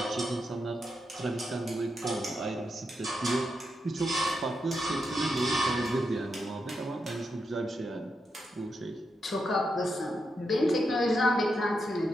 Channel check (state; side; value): normal; both; correlation 0.84